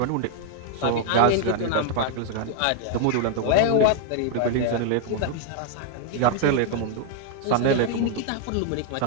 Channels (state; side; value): different; both; correlation 0.00